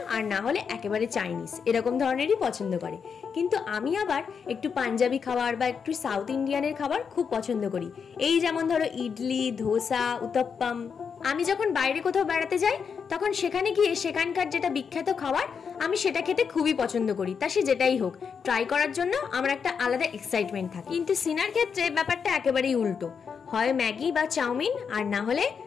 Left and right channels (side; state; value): right; quieter; 6.4 dB